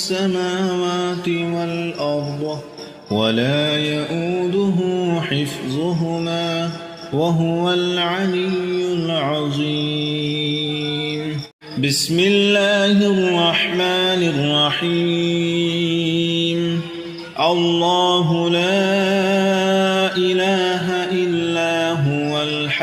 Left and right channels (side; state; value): both; identical; correlation 1.00